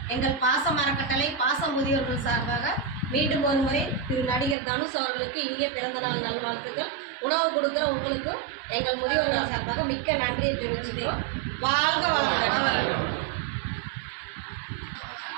எங்கள் பாசம் அறக்கட்டளை பாச முதியோர்கள் சார்பாக மீண்டும் ஒரு முறை திரு நடிகர் தனுஷ் அவர்களுக்கு இனிய பிறந்த நாள் நல்வாழ்த்துக்கள். உணவு கொடுக்குற உங்களுக்கும் எங்கள் முதியோர்கள் சார்பாக மிக்க நன்றியை தெரிவிச்சுக்கிறோம். வாழ்க வளமுடன்.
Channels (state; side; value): drops out; left; at 4.5 s